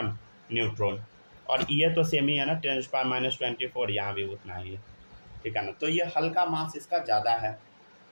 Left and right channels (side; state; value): both; inverted; correlation -1.00